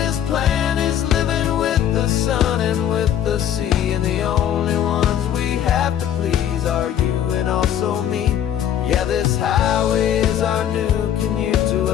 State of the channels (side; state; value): right; quieter; 10.3 dB